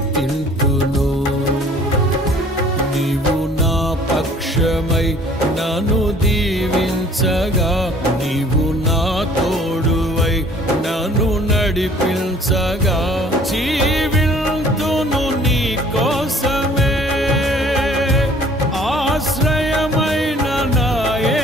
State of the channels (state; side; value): normal; both; correlation 0.54